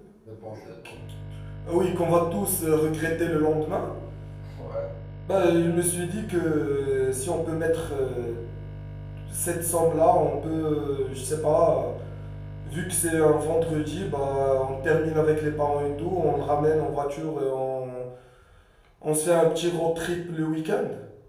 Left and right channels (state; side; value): identical; both; correlation 1.00